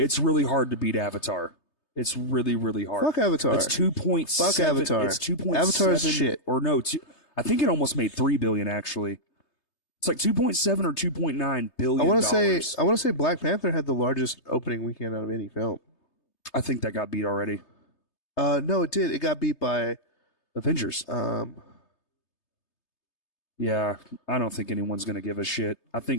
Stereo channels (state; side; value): late; right; 3.3 ms